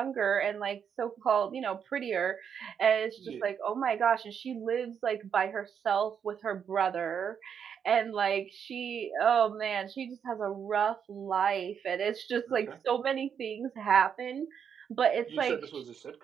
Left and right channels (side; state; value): left; quieter; 7.6 dB